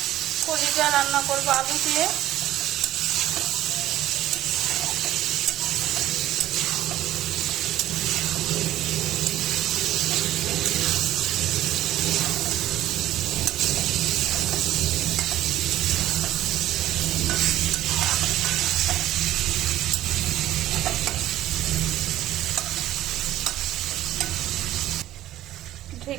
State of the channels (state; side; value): quieter; left; 13.9 dB